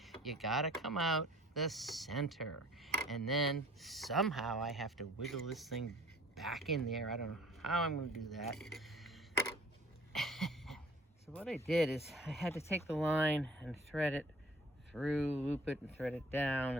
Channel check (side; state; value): both; normal; correlation 0.52